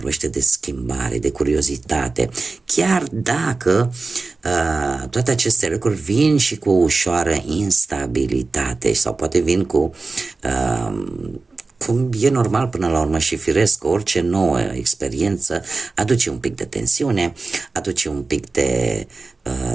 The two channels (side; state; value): left; quieter; 3.8 dB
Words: de schimbare, de curiozitate, chiar dacă toate aceste lucruri vin și cu o ușoară instabilitate sau poate vin cu cum e normal până la urmă și firesc, orice nouă experiență aduce un pic de tensiune, aduce un pic de